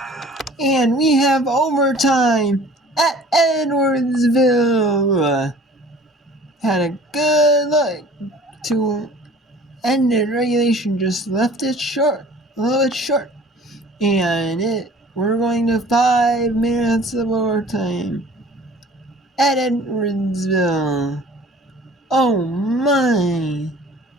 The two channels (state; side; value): normal; both; correlation 0.48